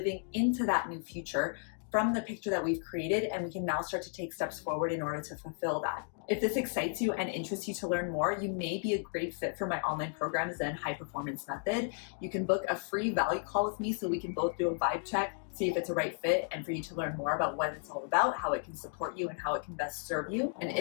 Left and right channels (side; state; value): right; silent; 55 dB below the other